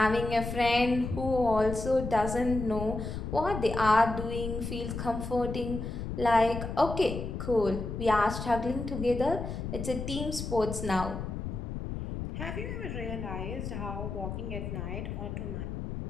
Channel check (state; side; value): noise; left; rumble, 5 dB below the sound